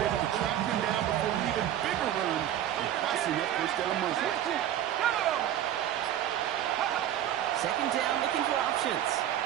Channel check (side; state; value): left; quieter; 11.4 dB